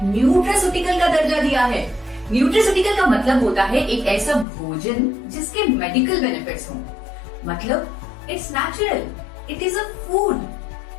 न्यूट्रास्यूटिकल का दर्जा दिया है। न्यूट्रास्यूटिकल का मतलब होता है एक ऐसा भोजन जिसके मेडिकल बेनिफिट्स हों। मतलब it's natural, it is a food,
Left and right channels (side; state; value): right; drops out; at 4.5 s